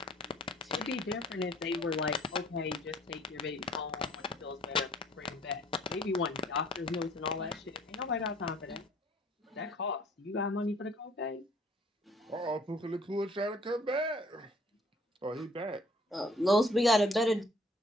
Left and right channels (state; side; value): normal; both; correlation 0.57